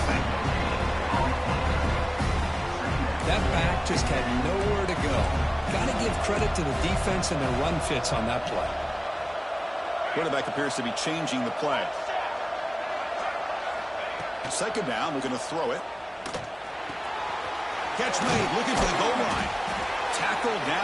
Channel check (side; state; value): both; identical; correlation 1.00